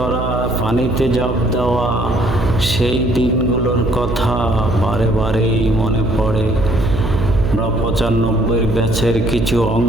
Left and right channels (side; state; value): right; noise; hum, 3 dB below the sound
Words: পানিতে ঝাঁপ দেওয়া, সেই দিনগুলোর কথা বারে বারেই মনে পড়ে। 95 ব্যাচের কিছু